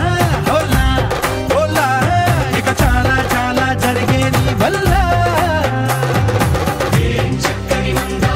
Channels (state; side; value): identical; both; correlation 1.00